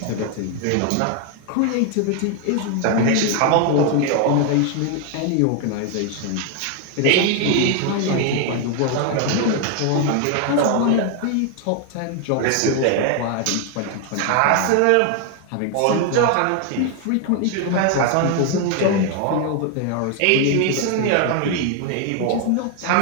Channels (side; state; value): both; different; correlation 0.01